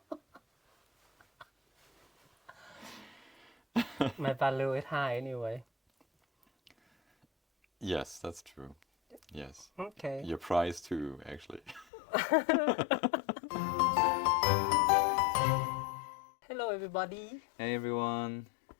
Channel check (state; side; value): drops out; right; at 11.9 s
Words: My value is high anyway. Yes, that's true. Yes, Okay. your price too, actually. Hello, everybody. Hey everyone.